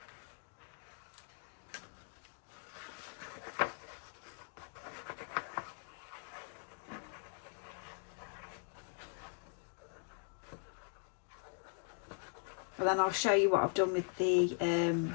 And then I'll show you what I've done with the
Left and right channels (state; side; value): silent; right; 51 dB below the other